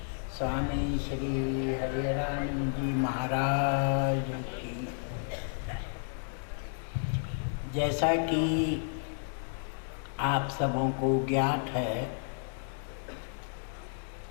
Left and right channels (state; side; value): silent; right; digital silence